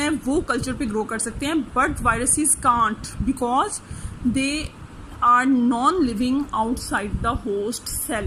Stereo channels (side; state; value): both; identical; correlation 1.00